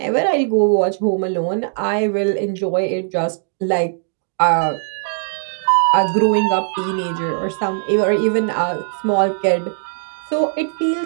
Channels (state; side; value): silent; left; digital silence